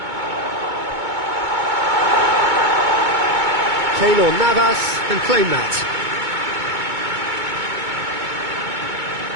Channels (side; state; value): left; late; 2.2 ms